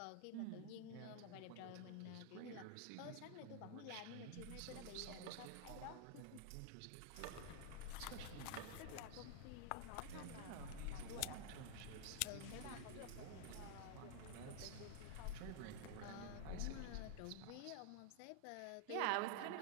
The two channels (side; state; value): both; different; correlation 0.00